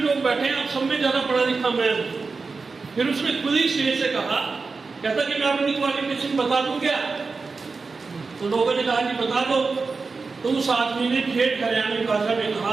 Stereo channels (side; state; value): left; quieter; 4.4 dB